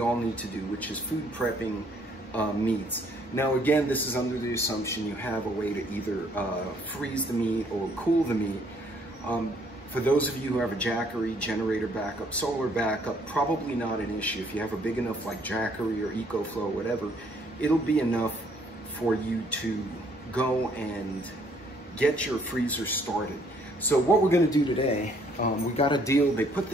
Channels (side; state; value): both; normal; correlation 0.64